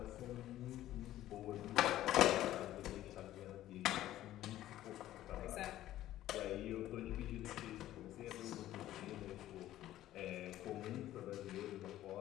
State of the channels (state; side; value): quieter; right; 13.8 dB